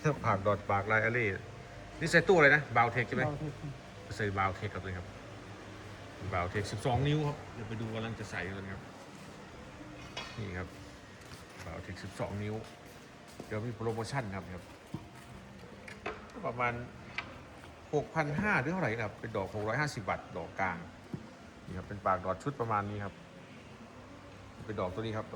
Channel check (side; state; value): both; identical; correlation 1.00